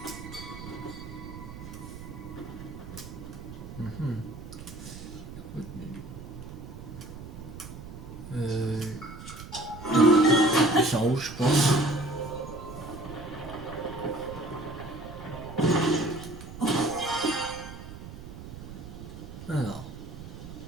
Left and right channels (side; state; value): right; noise; rumble, 12 dB below the sound